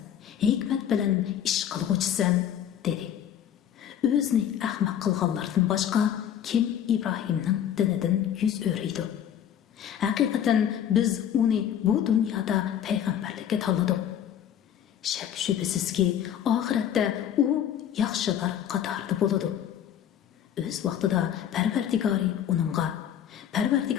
hikmat bilan ish qilg'uchisan, dedi. O'zini ahmoq qilganlardan boshqa kim Ibrohimning dinidan yuz o'riydi? Haqiqatan biz uni bu dunyoda payg'ambarlikka tanladik. Shak shubhasizki, oxiratda u yaxshilar qatorida bo'ladi. O'z vaqtida Parvardigori uningga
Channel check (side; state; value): right; quieter; 9.8 dB